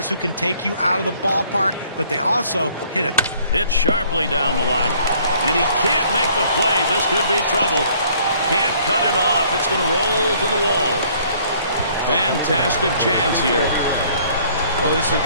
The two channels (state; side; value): inverted; both; correlation -0.60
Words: who can take you out of the ballpark, but they also hit sharply down the line. And he can't make the play. This could be trouble. Can't cut it off. It's going to roll to the wall. Fantastic chance here. Well, this is a